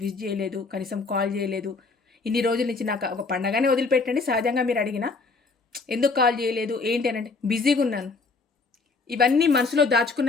విష్ చేయలేదు, కనీసం కాల్ చేయలేదు, ఇన్ని రోజుల నుంచి నాకు ఒక పండగనే వదిలిపెట్టండి సహజంగా మీరు అడిగినా, ఎందుకు కాల్ చేయలేదు, ఏంటి అనంటే బిజీగా ఉన్నాను. ఇవన్నీ మనసులో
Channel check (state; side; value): quieter; right; 4.1 dB